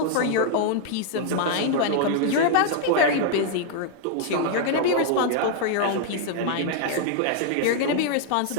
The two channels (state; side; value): different; both; correlation -0.01